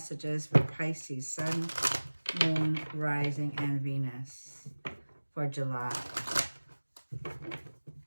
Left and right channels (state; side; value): inverted; both; correlation -1.00